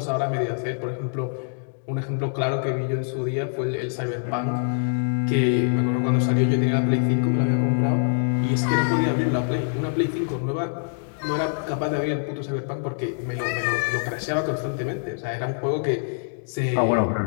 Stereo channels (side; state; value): right; silent; digital silence